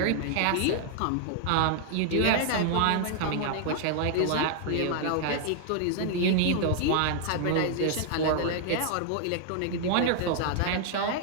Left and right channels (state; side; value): different; both; correlation 0.00